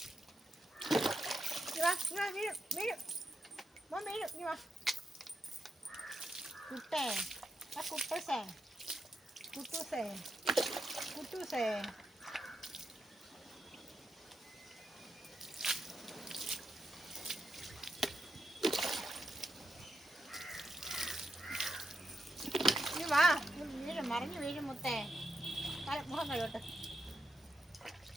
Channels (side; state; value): both; normal; correlation 0.84